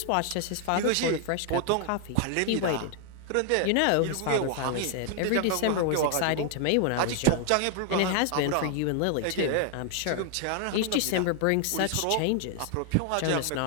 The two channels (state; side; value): different; both; correlation 0.00